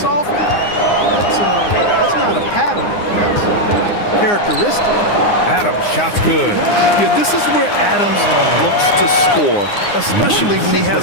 often, that's not a pattern. That's a characteristic. Adams, shot's good. Yeah, this is where Adams looks to score, especially when he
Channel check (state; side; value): late; right; 9.7 ms